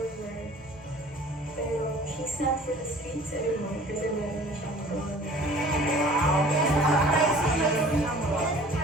pero she's not for the streets anymore kasi meron na siyang goal. Surprise mo yun.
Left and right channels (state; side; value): normal; both; correlation 0.48